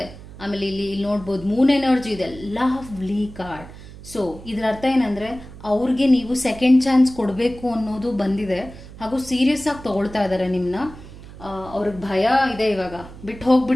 ಆಮೇಲೆ ಇಲ್ಲಿ ನೋಡ್ಬೋದು ಮೂನ್ ಎನರ್ಜಿ ಇದೆ, ಲವ್ಲಿ ಕಾರ್ಡ್. ಸೊ ಇದರ ಅರ್ಥ ಏನಂದ್ರೆ ಅವ್ರಿಗೆ ನೀವು ಸೆಕೆಂಡ್ ಚಾನ್ಸ್ ಕೊಡಬೇಕು ಅನ್ನೋದು ಬಂದಿದೆ, ಹಾಗೂ ಸೀರಿಯಸ್ ಆಗಿ ತಗೊಳ್ತಾ ಇದ್ದಾರೆ ನಿಮ್ನ. ಅವ್ರಿಗೆ ಭಯ ಇದೆ, ಇವಾಗ ಬಿಟ್ಟು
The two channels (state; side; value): noise; right; hum, 16 dB below the sound